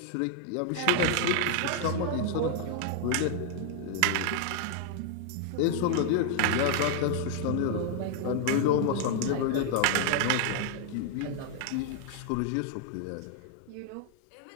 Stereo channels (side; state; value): both; different; correlation 0.00